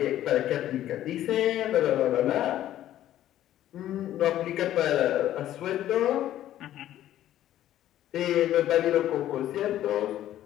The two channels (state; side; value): quieter; right; 12.7 dB